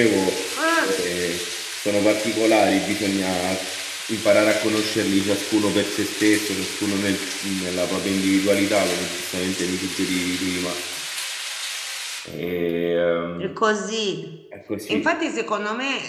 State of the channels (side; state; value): both; identical; correlation 1.00